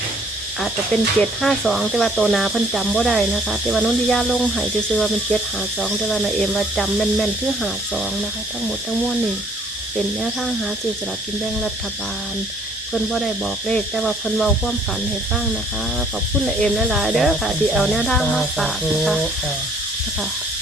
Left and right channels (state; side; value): normal; both; correlation 0.60